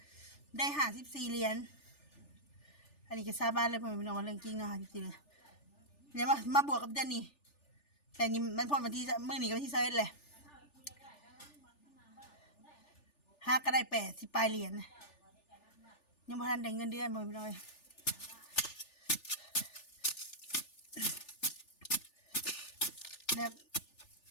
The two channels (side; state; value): right; late; 3.4 ms